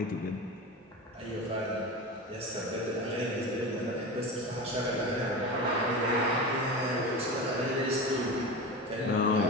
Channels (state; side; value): normal; both; correlation 0.26